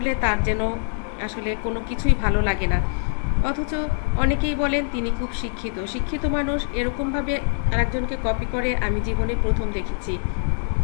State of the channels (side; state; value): right; silent; 63 dB below the other